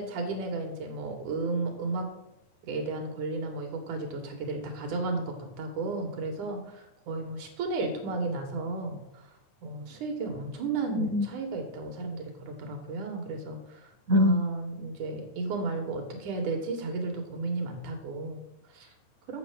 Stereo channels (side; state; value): left; late; 9.9 ms